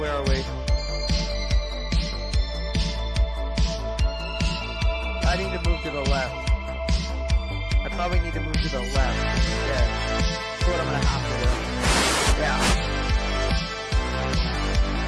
are we? I need to move to the left. I probably need to move to the left instead. That's what I'm going to have to do. Yeah.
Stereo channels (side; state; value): both; identical; correlation 1.00